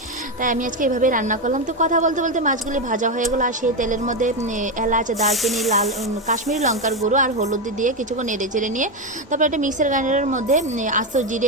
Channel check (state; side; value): normal; both; correlation 0.10